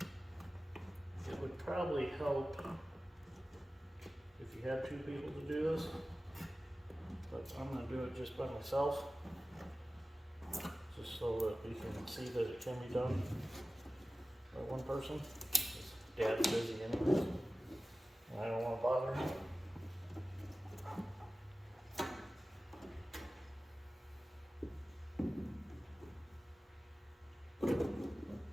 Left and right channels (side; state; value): both; normal; correlation 0.96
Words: It would probably help if you had two people to do this, but I'm going to do it just by myself, just so that we can see that it can be done by one person. Dad's busy anyways, and I don't want to bother him.